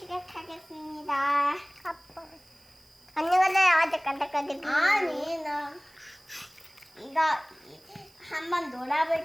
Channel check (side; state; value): right; noise; hiss, 29 dB below the sound